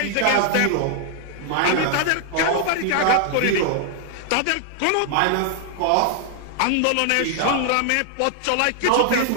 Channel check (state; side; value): different; both; correlation 0.00